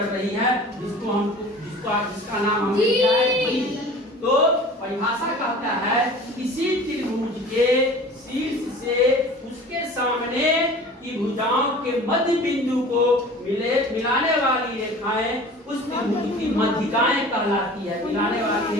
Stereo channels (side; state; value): both; normal; correlation 0.42